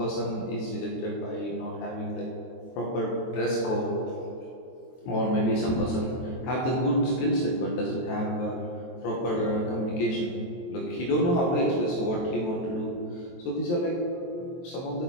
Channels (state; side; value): late; right; 23 ms